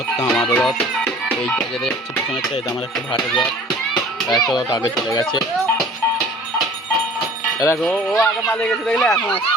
আমার রথ, এইটা যেটা যাচ্ছে পিছনেরটা এটা আমার একটা ভাটের রথ। একটা রথ আগে চলে গেছে, দেখো ও আগে পালিয়ে গেছে, দেখলে এখন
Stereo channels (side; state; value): both; normal; correlation 0.47